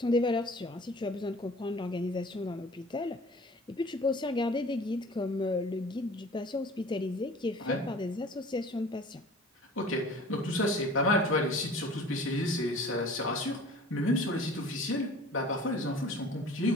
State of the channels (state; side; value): normal; both; correlation 0.45